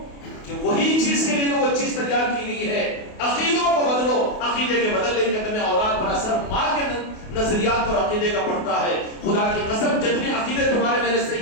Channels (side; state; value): right; late; 28 ms